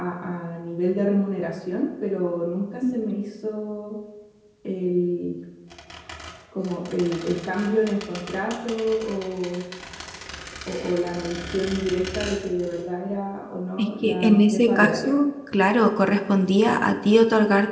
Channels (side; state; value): both; identical; correlation 1.00